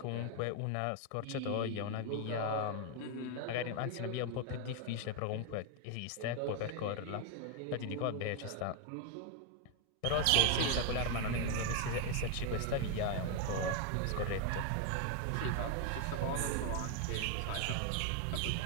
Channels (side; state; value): both; different; correlation 0.01